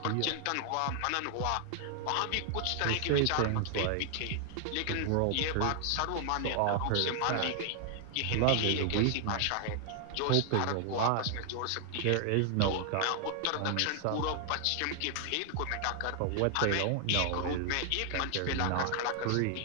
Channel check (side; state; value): both; different; correlation 0.00